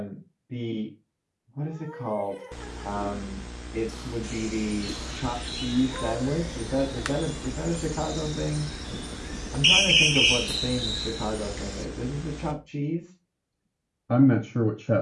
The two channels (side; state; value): both; identical; correlation 1.00